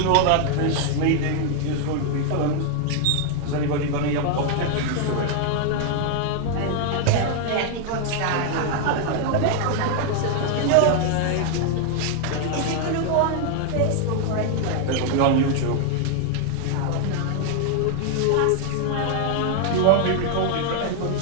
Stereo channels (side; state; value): both; different; correlation 0.00